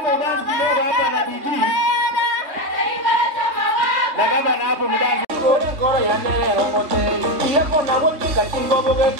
mudansi kidogo hapa na DJ. Na gavana hapo mudansi. Ngoro ya nere romoteli. Iyo kona wote katingo boge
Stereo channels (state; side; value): late; left; 3.5 ms